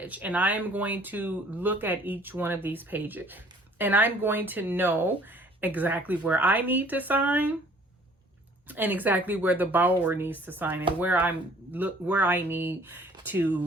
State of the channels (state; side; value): normal; both; correlation 0.55